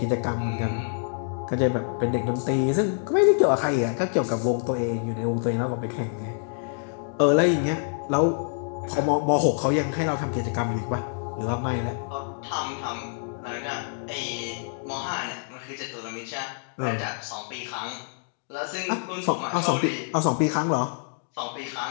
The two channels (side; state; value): right; silent; 60 dB below the other